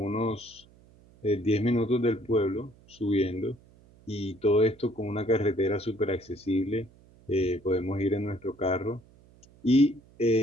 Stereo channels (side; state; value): right; noise; hum, 27 dB below the sound